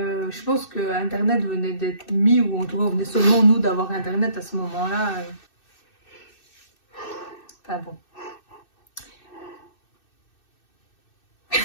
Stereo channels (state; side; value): late; right; 2.6 ms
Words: pense que Internet venait d'être mis, ou en tout cas on venait seulement nous d'avoir Internet à ce moment-là. Enfin bon.